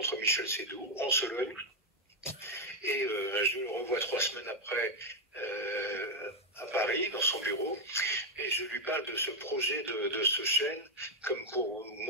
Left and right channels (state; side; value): normal; both; correlation 0.03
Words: Michel Seydoux en Sologne et je le revois 3 semaines après à Paris, dans son bureau, et je lui parle de ce projet de ce chêne, comme pour